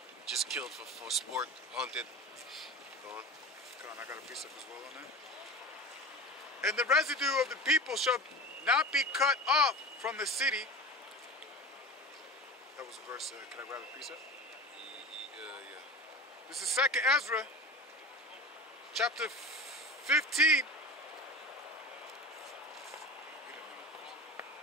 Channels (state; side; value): normal; both; correlation 0.32